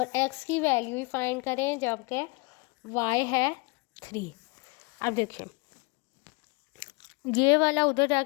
x की वैल्यू ही फाइंड करें जबकि y है 3। अब देखिए, ये वाला उधर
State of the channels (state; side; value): quieter; right; 28.2 dB